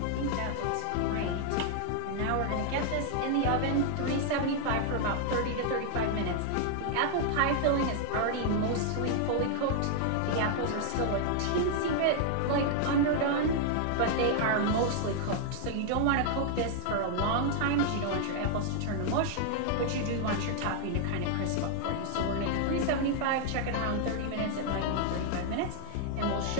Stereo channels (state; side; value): different; both; correlation 0.00